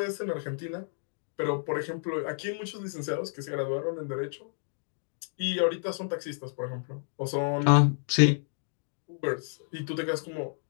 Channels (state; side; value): silent; right; digital silence